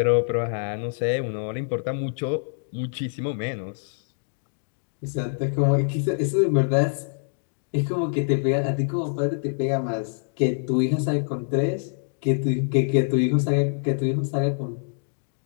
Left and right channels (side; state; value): right; silent; digital silence